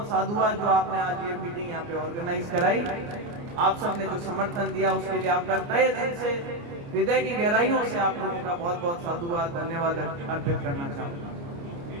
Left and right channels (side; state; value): left; late; 29 ms